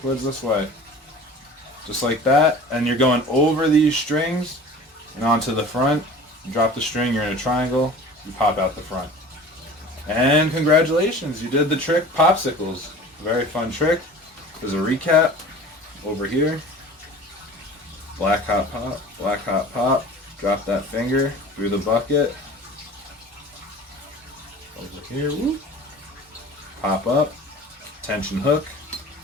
Towards this way. Just like that. And you're going over these strings and onto the front. You drop the string, you're in a triangle. You pop out the front. And congratulations, you did the trick Popsicles. Very fun trick. There's a recap over here. Black hot pop, black hot pop. Drop that finger through the bucket. Over here, whoop. Pop up. Tension hook.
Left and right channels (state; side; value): normal; both; correlation 0.41